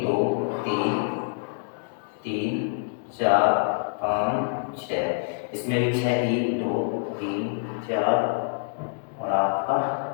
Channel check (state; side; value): silent; right; digital silence